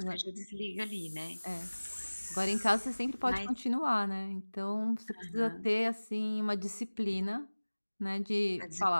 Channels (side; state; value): both; inverted; correlation -1.00